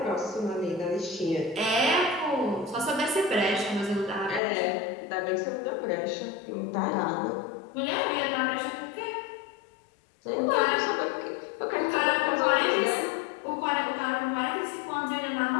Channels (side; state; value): right; drops out; at 4.4 s